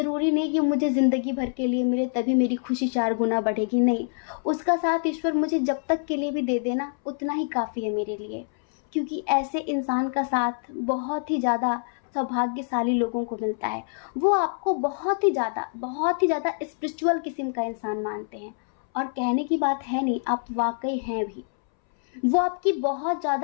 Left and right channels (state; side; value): silent; right; 61 dB below the other